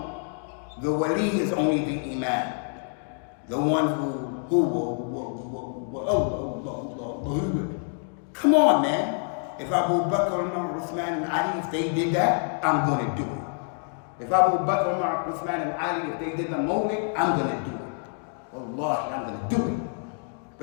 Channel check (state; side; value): silent; right; 56 dB below the other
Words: the wali is only the imam. The one come on, man. If Abu Bakr, Umar, Uthman, and Ali, if they did that, I'm going to do it. If Abu Bakr, Umar, Uthman, and Ali, if they did the mawlid, I'm going to do it. Wallahi, I'm going to do it.